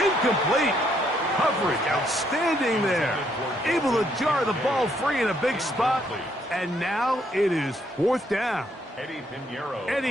incomplete. Coverage outstanding there. Able to jar the ball free in a big spot. And now it is 4th down.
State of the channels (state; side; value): normal; both; correlation 0.71